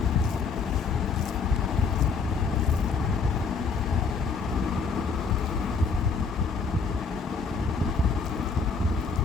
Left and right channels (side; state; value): right; quieter; 5.0 dB